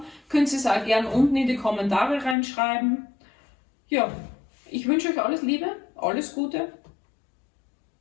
könnt ihr es auch gern unten in die Kommentare reinschreiben. Ja, ich wünsche euch alles Liebe, alles Gute.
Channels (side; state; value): right; drops out; at 2.4 s